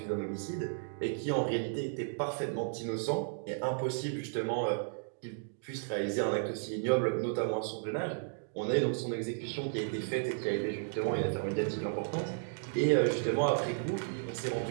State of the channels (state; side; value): silent; left; digital silence